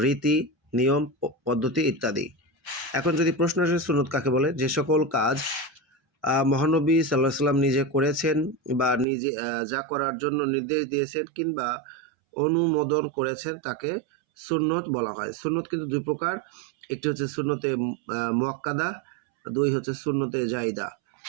নিয়ম, পদ্ধতি ইত্যাদি। এখন যদি প্রশ্ন আসে সুন্নত কাকে বলে, যে সকল কাজ মহানবী সাল্লাল্লাহু আলাইহি সাল্লাম নিজে করেছেন বা নিজে যা করার জন্য নির্দেশ দিয়েছেন কিংবা অনুমোদন করেছেন তাকে সুন্নত বলা হয়। সুন্নত কিন্তু দুই প্রকার, একটি হচ্ছে সুন্নতে মুআক্কাদা, দুই হচ্ছে সুন্নতে জাইদা।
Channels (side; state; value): left; drops out; at 9.1 s